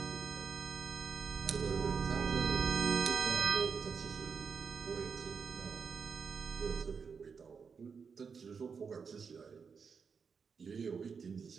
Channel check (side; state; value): left; quieter; 5.8 dB